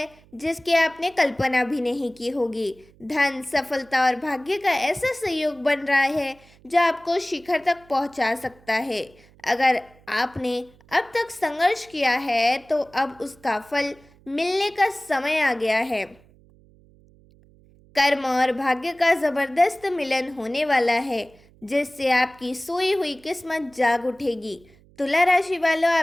जिसकी आपने कल्पना भी नहीं की होगी। धन, सफलता और भाग्य का ऐसा संयोग बन रहा है जो आपको शिखर तक पहुंचा सकता है। अगर आपने अब तक संघर्ष किया है तो अब उसका फल मिलने का समय आ गया है। कर्म और भाग्य का जबरदस्त मिलन होने वाला है जिससे आपकी सोई हुई किस्मत जाग उठेगी। तुला राशि वालों,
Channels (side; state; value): right; noise; hum, 28 dB below the sound